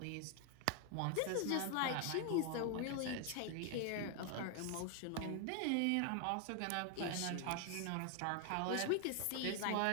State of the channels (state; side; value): different; both; correlation 0.01